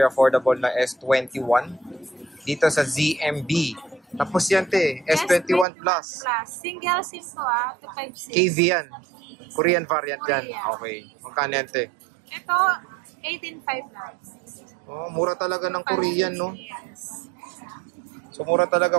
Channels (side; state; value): left; drops out; at 5.7 s